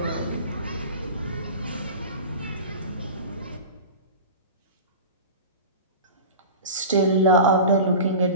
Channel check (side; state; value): both; inverted; correlation -0.33